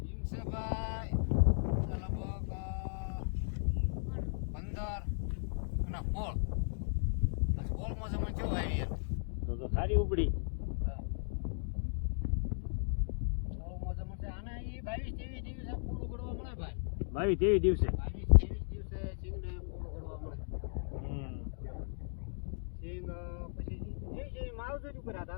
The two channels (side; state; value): right; silent; digital silence